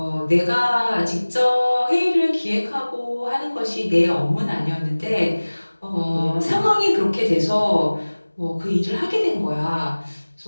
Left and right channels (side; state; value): both; inverted; correlation -1.00